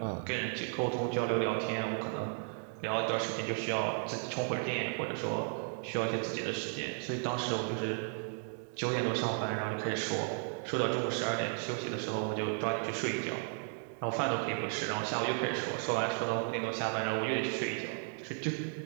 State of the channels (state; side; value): silent; left; 55 dB below the other